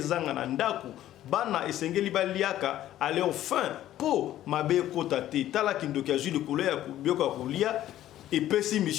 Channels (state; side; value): quieter; right; 13.0 dB